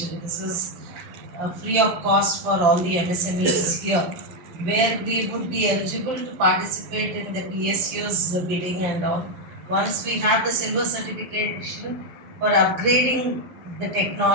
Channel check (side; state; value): left; late; 11 ms